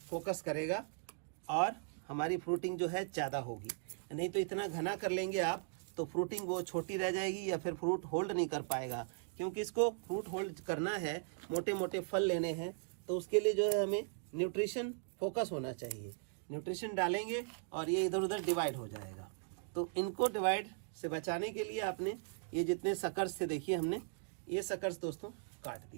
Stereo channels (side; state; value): left; silent; digital silence